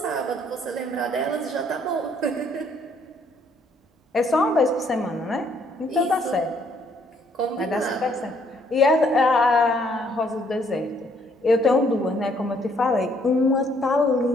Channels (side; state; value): both; normal; correlation 0.66